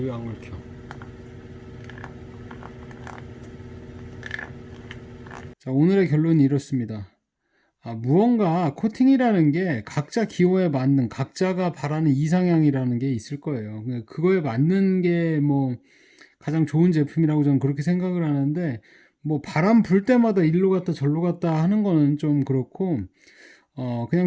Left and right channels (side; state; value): both; identical; correlation 1.00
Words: 안 긁혀? 자, 오늘의 결론이 이렇습니다. 무언가 코팅이라는 게 각자 기호에 맞는, 각자가 바라는 이상향이라는 게 있을 거예요. 그거에 맞는 게 뭐 가장 좋은 제품이라고 저는 그렇게 생각을 하는데, 뭐 바람 불 때마다 일로 갔다 절로 갔다 하는 거는 좀 그렇고,